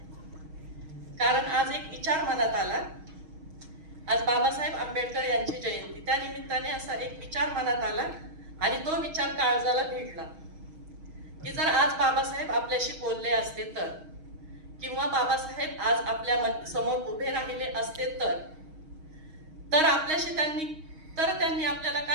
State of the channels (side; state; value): left; late; 6.4 ms